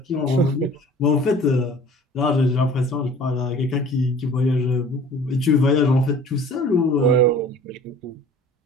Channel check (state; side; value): normal; both; correlation 0.47